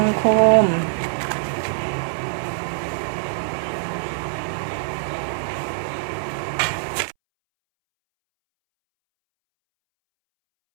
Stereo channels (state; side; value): silent; left; 63 dB below the other